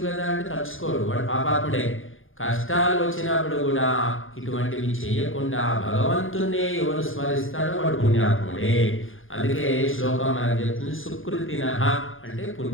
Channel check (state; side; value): late; right; 0.59 ms